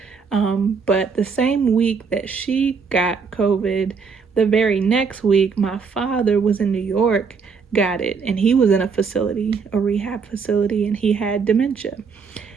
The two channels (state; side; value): quieter; left; 5.4 dB